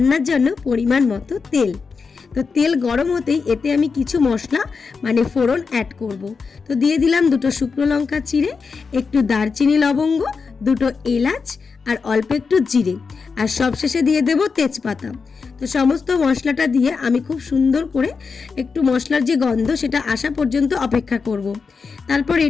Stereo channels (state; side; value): quieter; right; 5.1 dB